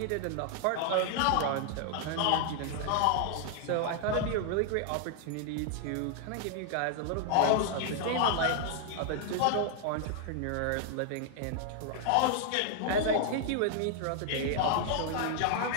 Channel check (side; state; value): both; different; correlation 0.00